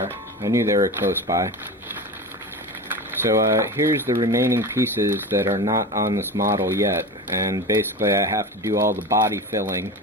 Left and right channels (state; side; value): normal; both; correlation 0.28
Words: I knew they were close by. So here's the remaining pieces that are not on this model yet, and basically I have to do all the body filling